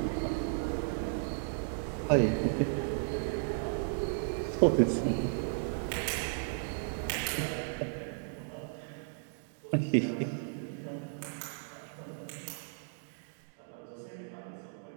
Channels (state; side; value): silent; left; digital silence